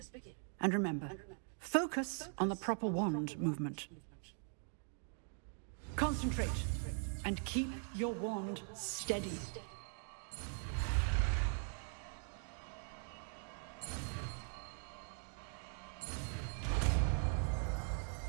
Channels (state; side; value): silent; left; 50 dB below the other